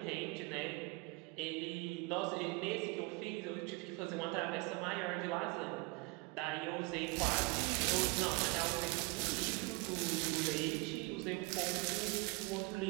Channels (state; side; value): quieter; left; 26.4 dB